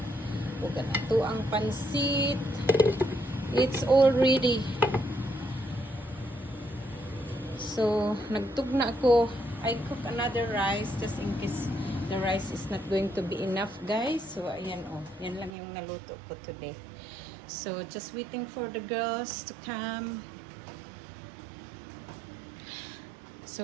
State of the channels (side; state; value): left; drops out; at 15.5 s